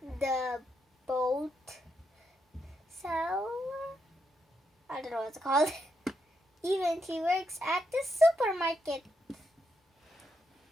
the boat seller. I don't know what it's called. Even she works at the supermarket.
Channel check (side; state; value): both; normal; correlation 0.81